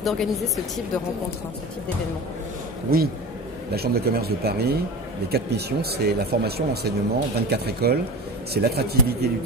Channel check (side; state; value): both; normal; correlation 0.31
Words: d'organiser ce type de rencontre, ce type d'événement? Oui, la Chambre de commerce de Paris, les 4 missions, c'est la formation, l'enseignement, 24 écoles, c'est l'attractivité du